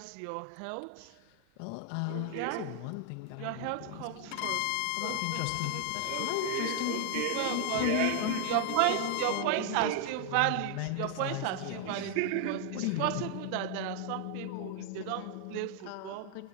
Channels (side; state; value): both; different; correlation 0.00